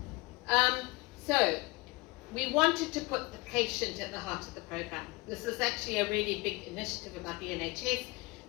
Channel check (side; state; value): right; quieter; 25.0 dB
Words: So we wanted to put the patient at the heart of the program. This is actually a really big initiative about the NHS,